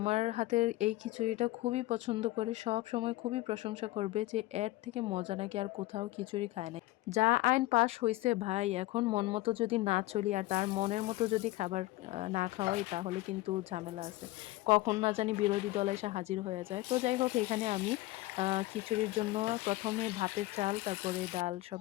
হাতের এই খিচুড়িটা খুবই পছন্দ করে, সব সময় খুবই প্রশংসা করবে যে এর থেকে মজা নাকি আর কোথাও খিচুড়ি খায় না। যা আইন পাশ হয়েছে ভাই, এখন মন মতো যদি না চলি আর তার মনের মতো যদি খাবার না খাওয়াই, তাহলে কিন্তু ঝামেলা আছে। কখন না জানি বিরোধী দল এসে হাজির হয়ে যায়। তো যাই হোক, এখানে আমি খিচুড়ির জন্য প্রথমে ভাতের চাল, তারপরে ডাল সব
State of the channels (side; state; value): right; quieter; 18.6 dB